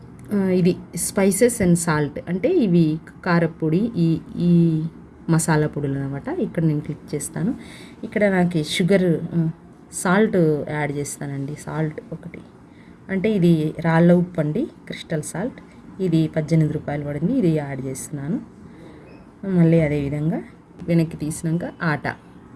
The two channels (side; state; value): both; identical; correlation 1.00